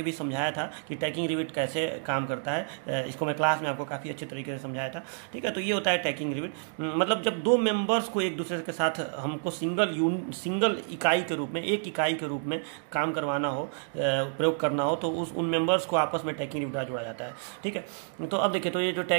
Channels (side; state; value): left; silent; digital silence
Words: भी समझाया था कि टैकिंग रिविट कैसे काम करता है। इसको मैं क्लास में आपको काफ़ी अच्छे तरीके से समझाया था, ठीक है। तो ये होता है टैकिंग रिविट। मतलब जब 2 मेंबर्स को एक दूसरे के साथ हमको सिंगल इकाई के रूप में, एक इकाई के रूप में काम करवाना हो, प्रयोग करना हो, तो उन मेंबर्स को आपस में टैकिंग रिविट जोड़ा जाता है, ठीक है। तो अब देखिए, तो ये जो